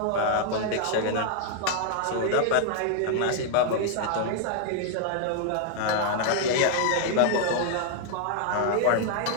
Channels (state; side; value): different; both; correlation 0.00